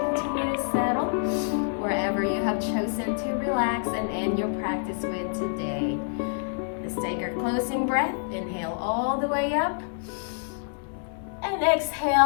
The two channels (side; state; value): right; silent; 60 dB below the other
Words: Chosen to relax and end your practice with today. Let's take our closing breath. Inhale all the way up. And